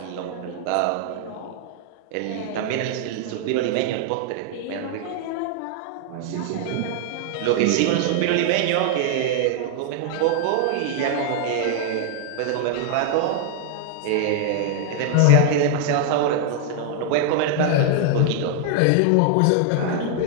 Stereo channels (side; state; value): both; different; correlation 0.00